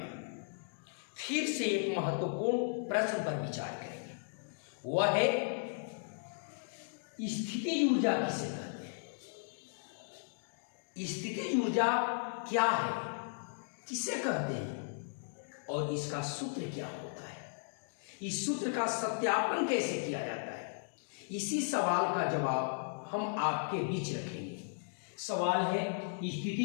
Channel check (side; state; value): right; silent; digital silence